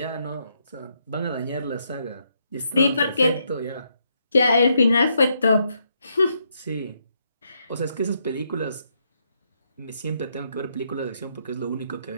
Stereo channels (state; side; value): inverted; both; correlation -0.77